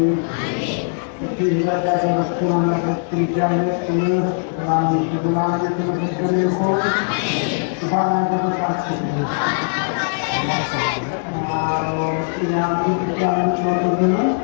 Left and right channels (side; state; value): right; silent; digital silence